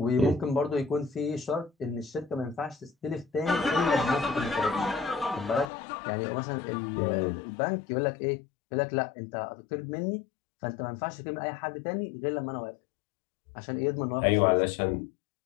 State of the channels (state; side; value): drops out; right; at 5.7 s